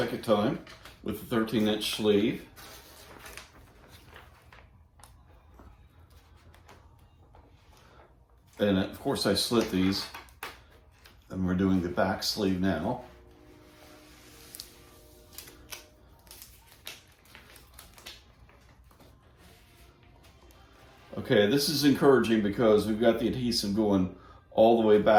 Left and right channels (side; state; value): both; identical; correlation 1.00